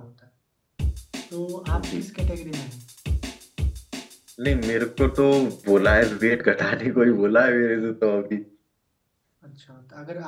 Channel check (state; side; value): identical; both; correlation 1.00